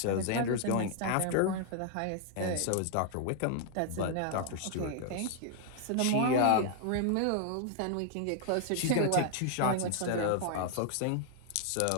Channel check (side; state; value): both; different; correlation 0.00